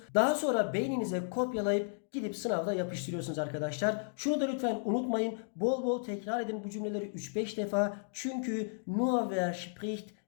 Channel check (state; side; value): silent; right; digital silence